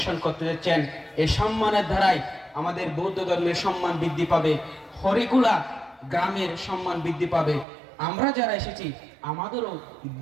করতে যাচ্ছেন। এই সম্মানের ধারায় আমাদের বৌদ্ধ ধর্মের সম্মান বৃদ্ধি পাবে, হরিকুলা গ্রামের সম্মান বৃদ্ধি পাবে। আমরা যারা এসেছি আমাদেরও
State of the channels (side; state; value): left; drops out; at 7.7 s